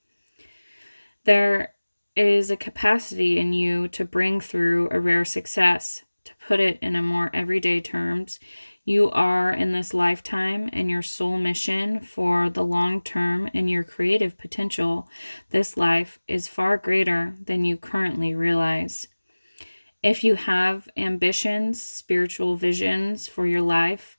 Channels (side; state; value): both; inverted; correlation -1.00